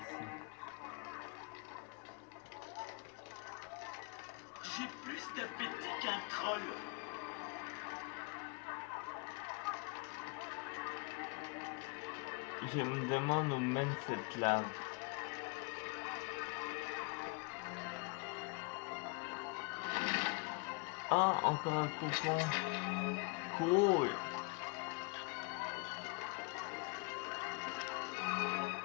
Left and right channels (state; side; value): quieter; right; 30.0 dB